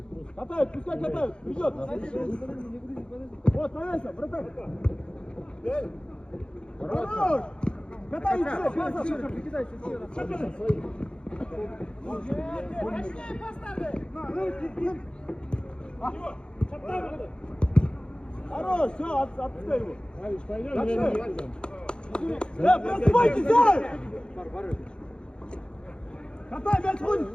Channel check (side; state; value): right; late; 0.052 ms